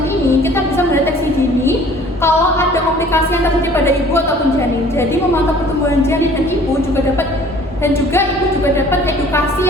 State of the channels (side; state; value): both; normal; correlation 0.51